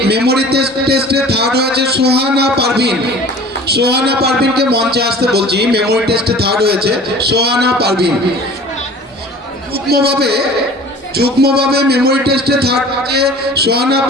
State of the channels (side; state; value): both; normal; correlation 0.44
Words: মেমোরি টেস্টে থার্ড হয়েছে। সোহানা পারভিন, সোহানা পারভিনকে মঞ্চে আসতে বলছি। মেমোরি টেস্টে থার্ড হয়েছে সোহানা পারভিন। যুগ্মভাবে মেমোরি টেস্টে থার্ড হয়েছে সোহানা